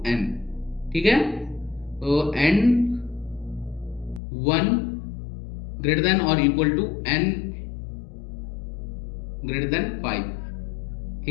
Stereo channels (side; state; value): right; drops out; at 4.2 s